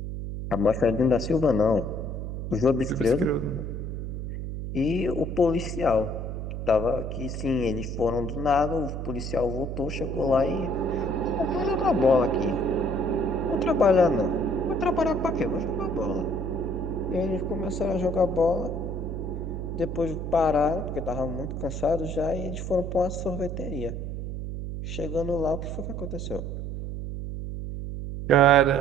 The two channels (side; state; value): right; noise; hum, 5 dB below the sound